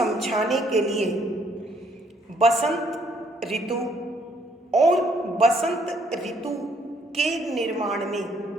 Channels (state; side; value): normal; both; correlation 0.67